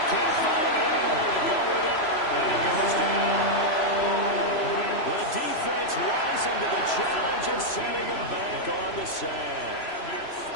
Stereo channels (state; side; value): late; right; 3.0 ms